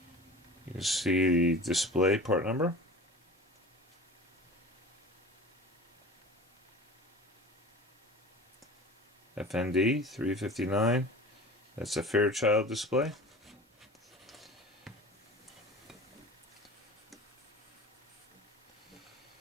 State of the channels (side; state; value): both; normal; correlation 0.37